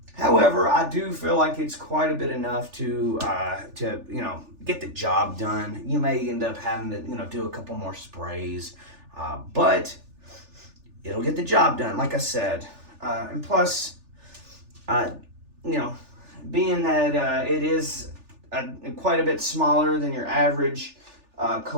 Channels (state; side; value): late; left; 3.4 ms